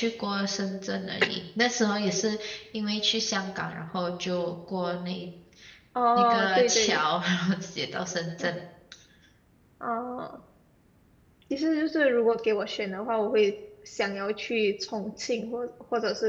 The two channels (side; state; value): both; identical; correlation 1.00